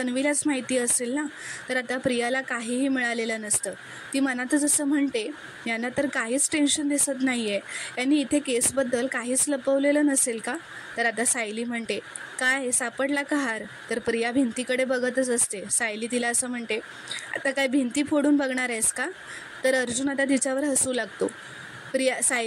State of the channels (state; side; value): identical; both; correlation 1.00